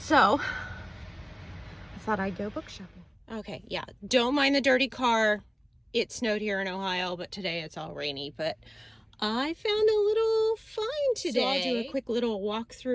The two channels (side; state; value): both; identical; correlation 1.00